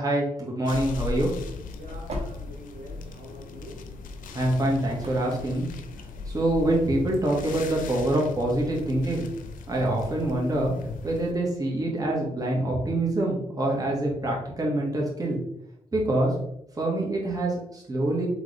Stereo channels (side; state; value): both; normal; correlation 0.76